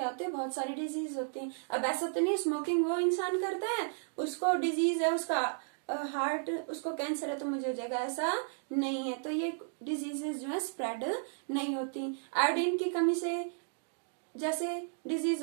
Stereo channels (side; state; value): left; silent; digital silence